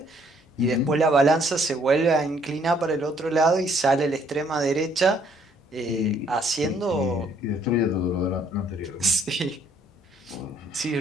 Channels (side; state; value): both; normal; correlation 0.65